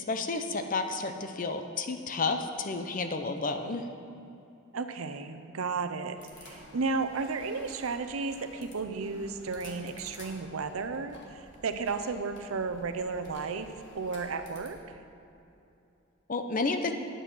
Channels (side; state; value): both; normal; correlation -0.08